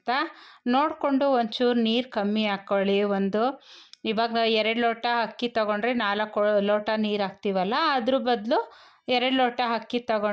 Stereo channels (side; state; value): both; identical; correlation 1.00